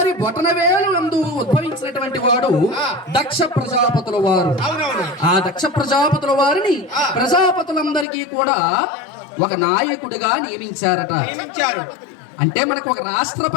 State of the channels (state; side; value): drops out; right; at 8.1 s